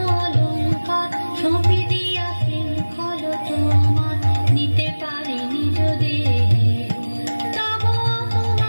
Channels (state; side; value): inverted; both; correlation -1.00